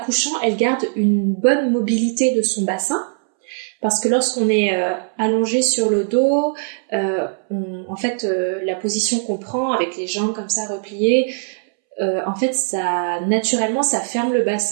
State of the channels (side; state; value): left; silent; 65 dB below the other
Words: elle garde une bonne mobilité de son bassin. Parce que lorsqu'on est allongé sur le dos, la position qu'on prend avec les jambes comme ça repliées, en fait, naturellement, ça ferme le